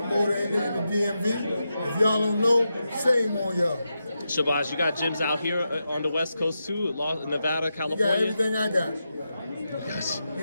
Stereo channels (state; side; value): inverted; both; correlation -0.88